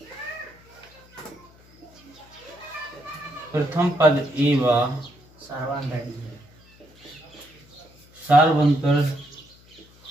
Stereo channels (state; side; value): noise; left; hum, 26 dB below the sound